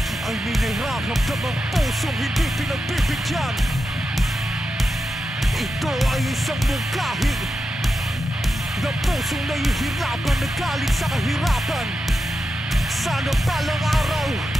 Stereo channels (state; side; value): normal; both; correlation 0.89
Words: ay may nararamdam ang pusong hindi pinagbibigyan. Ito ay isang mungkahi na pusong nahihirapan na galing sa kahirapan. Sana balang araw